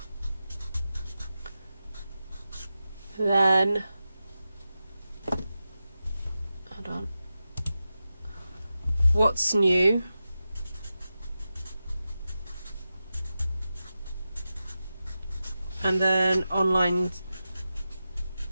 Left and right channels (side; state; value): both; inverted; correlation -0.92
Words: then hold on, what's new, and then online